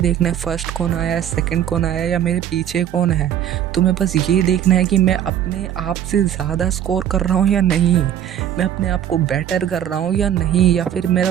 है फर्स्ट कौन आया, सेकंड कौन आया या मेरे पीछे कौन है। तुम्हें बस ये देखना है कि मैं अपने आप से ज़्यादा स्कोर कर रहा हूँ या नहीं, मैं अपने आप को बेटर कर रहा हूँ या नहीं, या फिर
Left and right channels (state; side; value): quieter; left; 10.2 dB